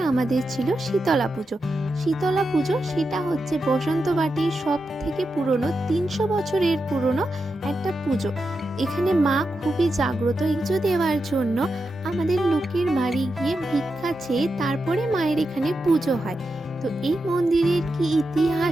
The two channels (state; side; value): normal; both; correlation 0.88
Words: আমাদের ছিল শীতলা পুজো। শীতলা পুজো সেটা হচ্ছে বসন্তবাটির সব থেকে পুরনো 300 বছরের পুরনো একটা পুজো। এখানে মা খুবই জাগ্রত। পুজো দেওয়ার জন্য আমাদের লোকের বাড়ি গিয়ে ভিক্ষা চেয়ে তারপরে মায়ের এখানে পুজো হয়। তো এই মন্দিরের কি